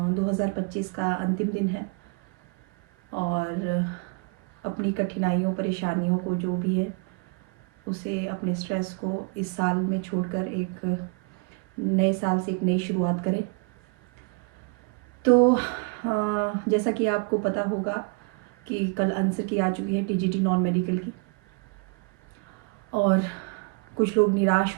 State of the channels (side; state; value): left; quieter; 32.2 dB